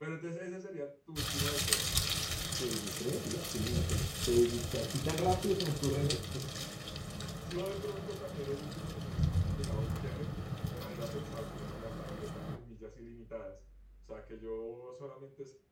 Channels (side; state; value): both; identical; correlation 1.00